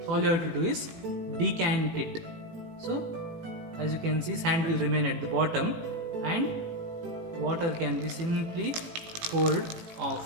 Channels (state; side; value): late; left; 18 ms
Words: All you have to do is decant it. So as you can see, sand will remain at the bottom and water can be simply poured